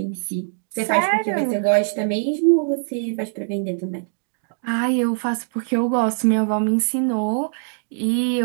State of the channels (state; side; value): silent; left; digital silence